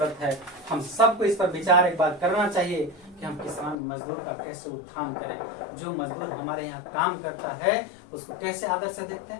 है, हम सबको इस पर विचार एक बार करना चाहिए कि हम किसान मजदूर का कैसे उत्थान करें। जो मजदूर हमारे यहाँ काम करता है उसको कैसे आदर से देखते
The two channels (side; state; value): right; drops out; at 3.8 s